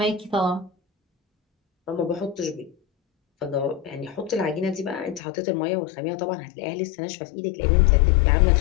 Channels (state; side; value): drops out; right; at 5.2 s